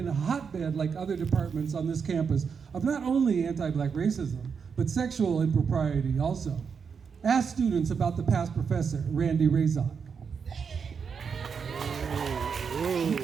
a hotbed, like other departments on this campus, of not only anti-Black racism, but sexual impropriety also. Ask students about the past professor, Randy Razak.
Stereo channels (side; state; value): left; quieter; 6.2 dB